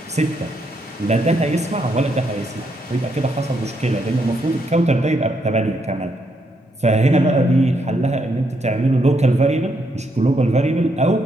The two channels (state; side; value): normal; both; correlation 0.77